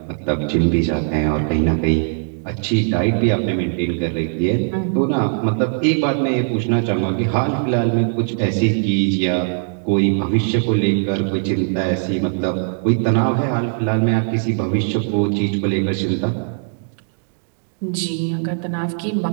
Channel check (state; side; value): silent; left; digital silence